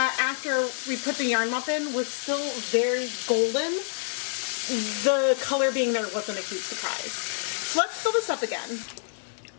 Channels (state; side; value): silent; right; digital silence